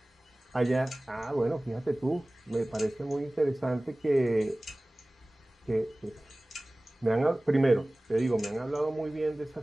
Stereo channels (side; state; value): both; normal; correlation 0.98